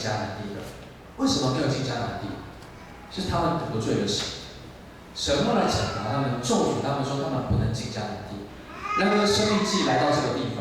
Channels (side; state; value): both; identical; correlation 1.00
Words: 南地的。为什么没有进迦南地？是他们得罪了神，神后来惩罚他们，咒诅他们说他们不能进迦南地。然而申命记来到这个地